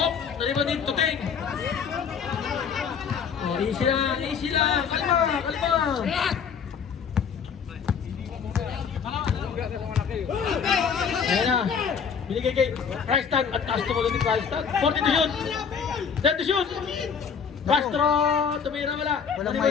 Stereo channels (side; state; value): right; quieter; 6.7 dB